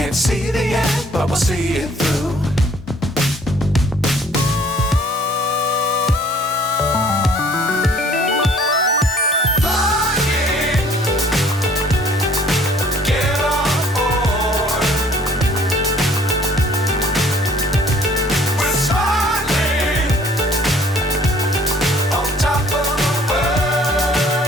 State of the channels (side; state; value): both; normal; correlation 0.56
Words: see the end, but we'll see it through.